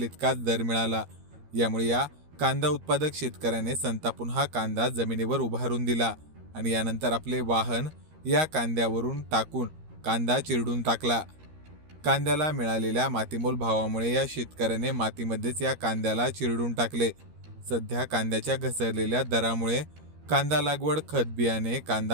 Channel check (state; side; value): late; left; 13 ms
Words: इतकाच दर मिळाला। यामुळे या कांदा उत्पादक शेतकऱ्याने संतापून हा कांदा जमिनीवर उभारून दिला आणि यानंतर आपले वाहन या कांद्यावरून टाकून कांदा चिरडून टाकला। कांद्याला मिळालेल्या मातीमोल भावामुळे या शेतकऱ्याने मातीमध्येच या कांद्याला चिरडून टाकले। सध्या कांद्याच्या घसरलेल्या दरामुळे कांदा लागवड, खत बियाणे,